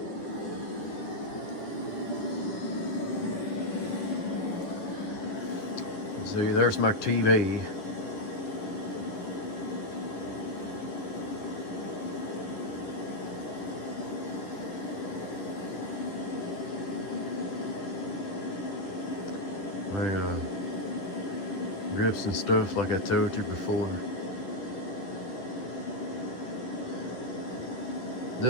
See, there's my TV. My grips and stuff, like I told you before.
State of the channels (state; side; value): late; right; 9.8 ms